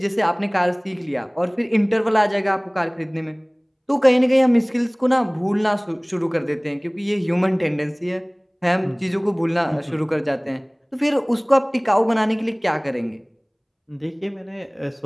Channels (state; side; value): identical; both; correlation 1.00